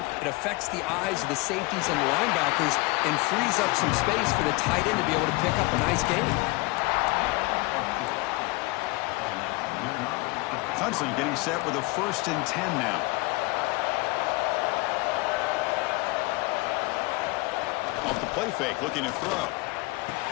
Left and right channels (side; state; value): right; quieter; 24.2 dB